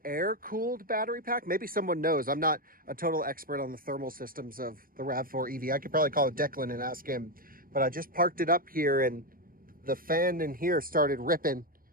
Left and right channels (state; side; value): late; left; 0.41 ms